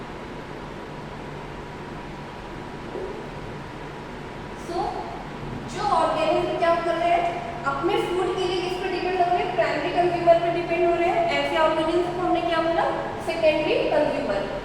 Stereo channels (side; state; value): both; identical; correlation 1.00